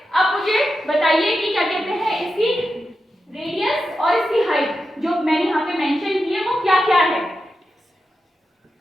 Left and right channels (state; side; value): normal; both; correlation 0.89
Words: अब मुझे बताइए कि क्या कहते हैं, इसकी रेडियस और इसकी हाइट जो मैंने यहाँ पे मेंशन की है वो क्या क्या है।